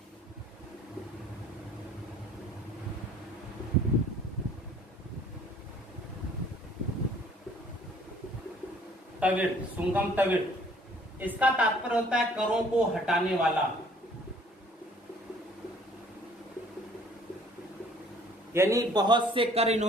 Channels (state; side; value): normal; both; correlation 0.56